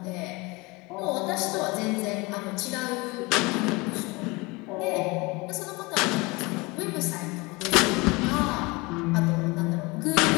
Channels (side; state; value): right; quieter; 25.0 dB